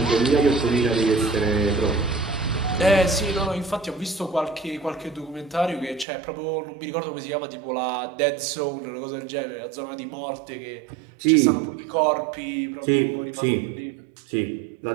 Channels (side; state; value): left; drops out; at 6.1 s